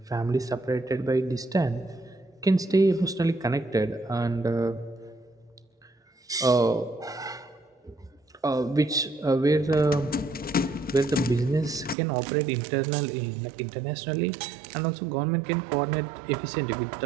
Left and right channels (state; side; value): drops out; left; at 12.0 s